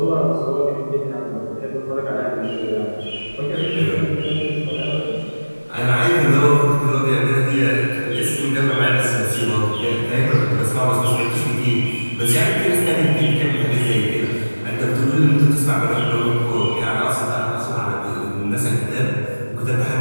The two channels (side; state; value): both; inverted; correlation -1.00